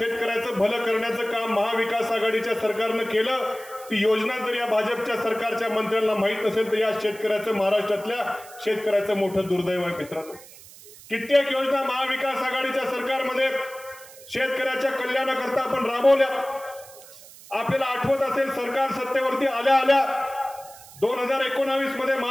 भलं करण्याचं काम महाविकास आघाडीच्या सरकारनं केलं, ती योजना जर या भाजपच्या सरकारच्या मंत्र्यांना माहीत नसेल तर या शेतकऱ्याचं, महाराष्ट्रातल्या शेतकऱ्याचं मोठं दुर्दैव आहे मित्रांनो. कित्येक योजना महाविकास आघाडीच्या सरकारमध्ये शेतकऱ्याच्या कल्याणाकरता आपण राबवल्या. आपल्याला आठवत असेल, सरकार सत्तेवरती आल्या आल्या 2019 मध्ये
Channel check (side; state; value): right; noise; hiss, 20 dB below the sound